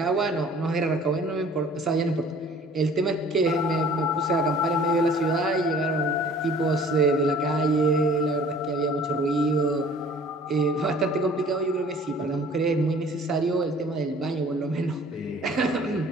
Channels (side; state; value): both; normal; correlation 0.51